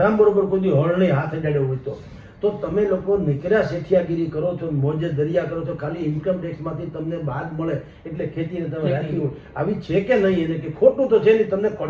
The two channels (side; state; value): both; identical; correlation 1.00